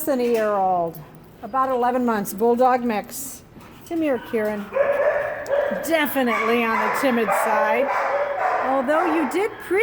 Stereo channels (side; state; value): both; identical; correlation 1.00